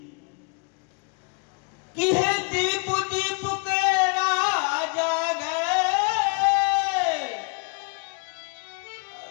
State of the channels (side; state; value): right; quieter; 36.9 dB